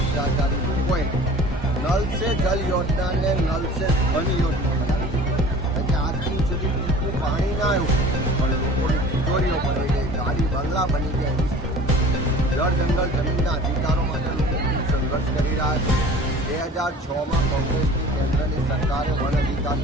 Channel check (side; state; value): both; normal; correlation 0.44